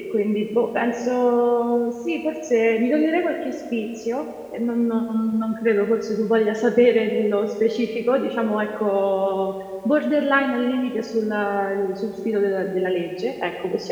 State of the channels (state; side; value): identical; both; correlation 1.00